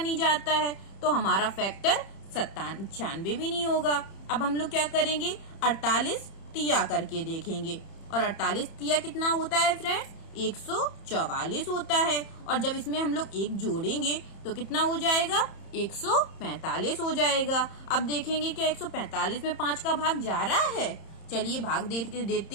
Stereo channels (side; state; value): right; late; 31 ms